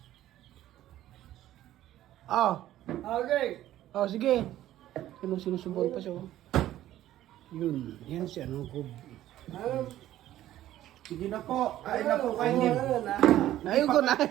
Oh. Okay. Oh, sige. Sinusubuan pa siya. Oh. Yun. Yan si ano ko. Sige na po. Ay na po kayo.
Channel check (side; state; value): left; quieter; 13.4 dB